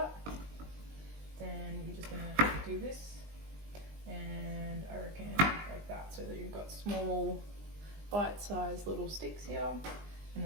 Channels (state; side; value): late; left; 20 ms